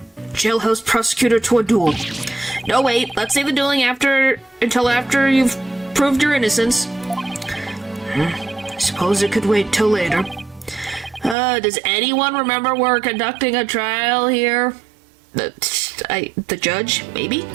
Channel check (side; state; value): left; drops out; at 11.4 s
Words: jailhouse prosecutor to a duel. No, wait, let's save the dueling until after you've proved your innocence. I suppose it could wait till later. Does anyone remember we're conducting a trial here? The judge, maybe?